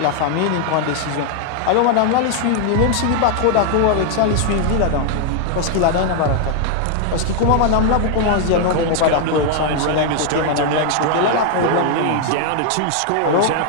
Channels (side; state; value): both; different; correlation 0.00